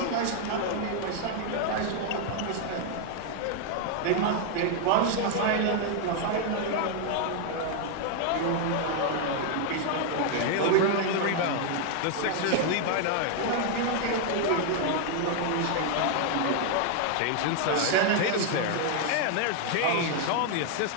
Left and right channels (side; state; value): both; different; correlation 0.00